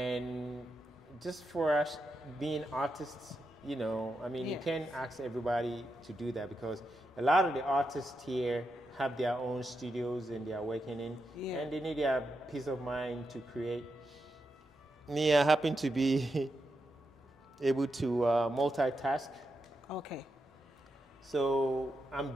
just for us being artists, you can't ask everybody to do that because a lot of the artists here have their own studios and they are working in, and they need their peace of mind to create. Me, I happen to be able to multitask. Okay. So I'm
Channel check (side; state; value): both; normal; correlation 0.86